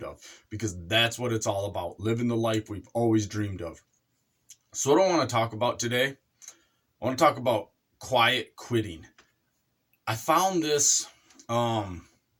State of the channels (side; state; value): both; identical; correlation 1.00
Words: of. Because that's what it's all about, living the life we've always dreamed of. So what I want to talk about today, I want to talk about quiet quitting. I found this term